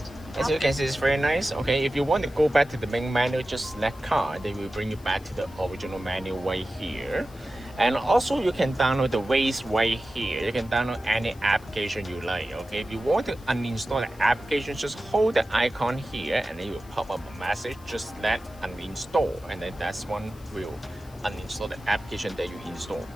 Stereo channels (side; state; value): left; noise; hiss, 25 dB below the sound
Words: As you can see, it's very nice. Okay, if you want to go back to the main menu, just select car. They will bring you back to the original menu right here. And also you can download the Waze right here. You can download any application you like. Okay, if you want to uninstall the application, just hold the icon here and then it will pop up a message. Just select uninstall, and then that's one will uninstall the application that you install.